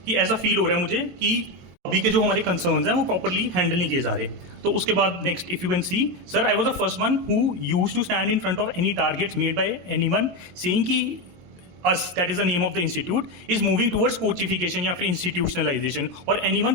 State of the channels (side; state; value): left; late; 22 ms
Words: कि ऐसा फील हो रहा है मुझे कि अभी के जो हमारे कंसर्न्स हैं वो प्रॉपर्ली हैंडल नहीं किए जा रहे। तो उसके बाद next if you can see sir I was the first one who used to stand in front of any targets made by anyone saying कि us, that is the name of the institute, is moving towards coachification या फिर institutionalization और anyone